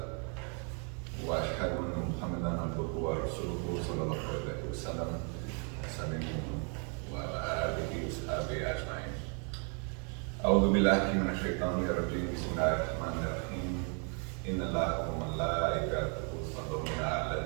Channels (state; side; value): quieter; left; 39.2 dB